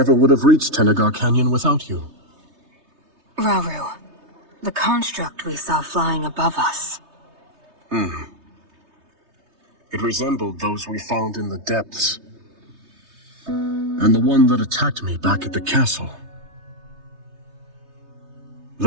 would have reached Tenagar Canyon without you. Rauru, the construct we saw flying above us. It resembled those we found in the depths. And the one that attacked me back at the castle.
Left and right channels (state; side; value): late; left; 3.3 ms